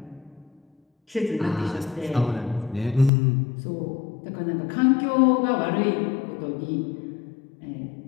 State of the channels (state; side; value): drops out; right; at 3.1 s